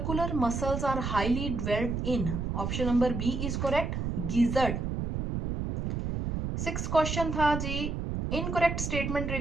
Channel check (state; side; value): noise; right; rumble, 2 dB below the sound